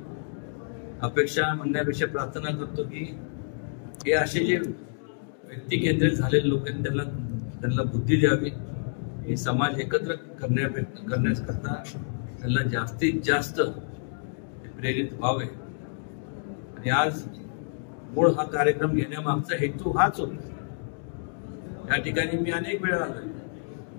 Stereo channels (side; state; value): right; silent; digital silence